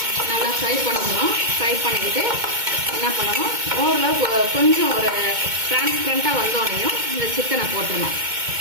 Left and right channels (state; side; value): late; left; 2.2 ms